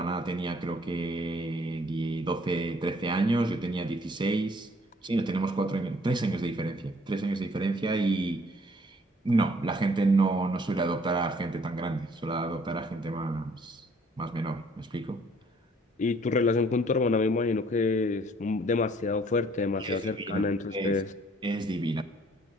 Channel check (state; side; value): normal; both; correlation 0.60